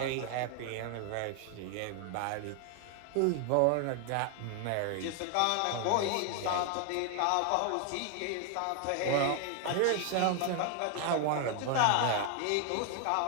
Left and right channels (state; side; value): different; both; correlation 0.01